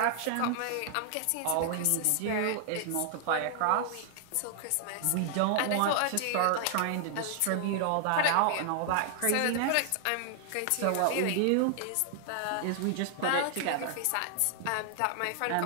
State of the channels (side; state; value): both; different; correlation 0.00